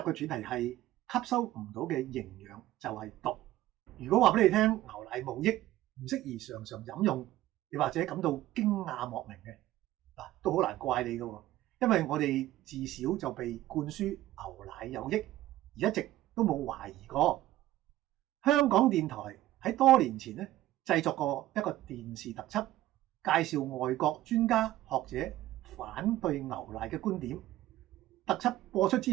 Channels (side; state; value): left; quieter; 15.0 dB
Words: 主題係吸收唔到嘅營養就係毒。如果話俾你聽牛奶冇益，唔適宜常常飲用，你或者感到驚訝莫名嘅，都好難怪你㗎，因為我哋自小就被灌輸牛奶有益，而一直都冇懷疑過。香港電台喺多年前咧製作過一個電視特輯，介紹外國專家學者反對牛奶嘅觀點。特輯播出